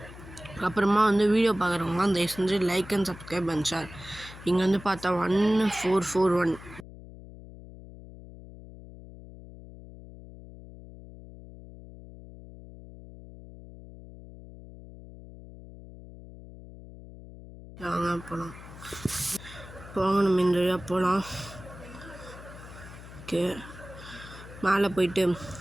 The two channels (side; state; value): left; noise; hum, 16 dB below the sound